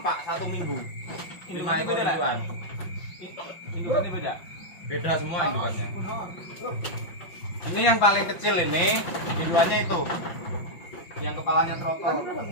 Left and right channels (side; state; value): right; late; 5.7 ms